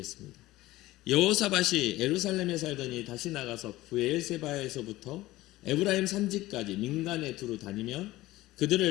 여호사밧이 예루살렘에 살더니 다시 나가서 브엘세바에서부터 에브라임 산지까지 민간에 두루 다니며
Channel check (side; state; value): right; quieter; 17.6 dB